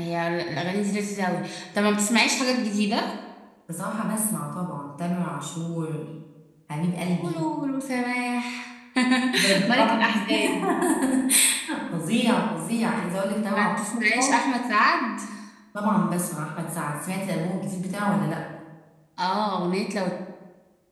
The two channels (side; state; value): both; identical; correlation 1.00